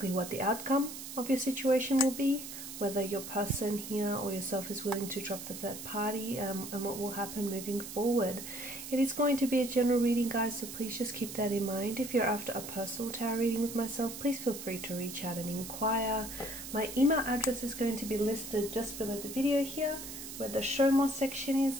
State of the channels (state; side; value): noise; right; hiss, 10 dB below the sound